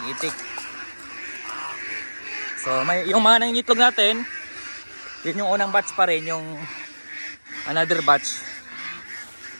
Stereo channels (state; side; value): inverted; both; correlation -1.00